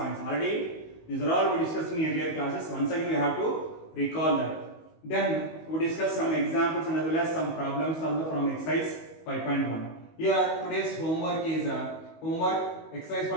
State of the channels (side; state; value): right; late; 19 ms